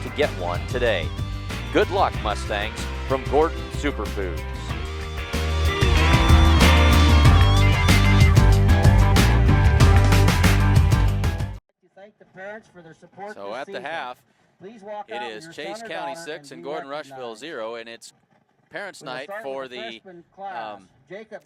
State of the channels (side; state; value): both; identical; correlation 1.00